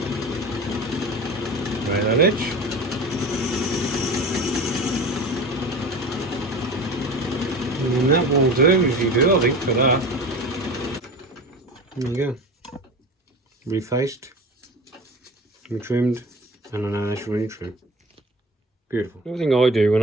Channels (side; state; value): both; normal; correlation 0.34